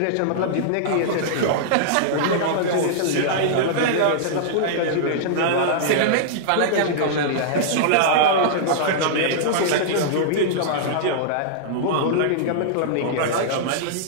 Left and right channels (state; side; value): different; both; correlation -0.02